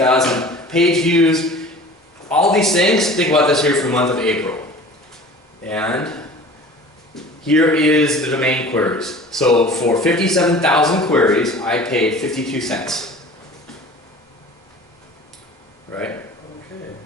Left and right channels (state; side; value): normal; both; correlation 0.42